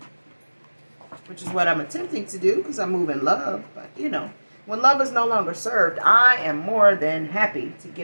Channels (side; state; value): both; inverted; correlation -1.00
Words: which is what I'm attempting to do because I move in love. But, you know, when love is no longer served, I am more than happy to get